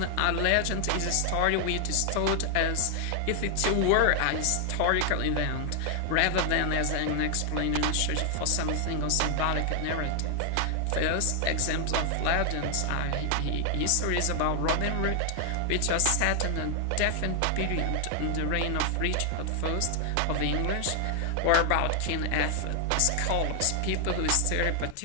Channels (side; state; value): both; different; correlation 0.00